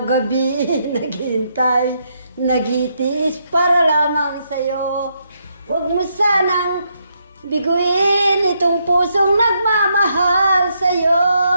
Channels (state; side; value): inverted; both; correlation -0.77